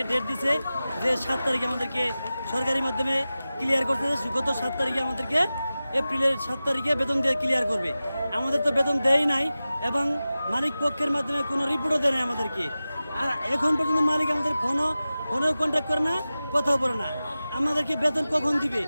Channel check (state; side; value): inverted; both; correlation -0.95